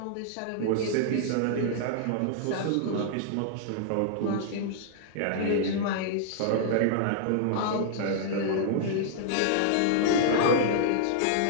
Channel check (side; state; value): both; different; correlation -0.01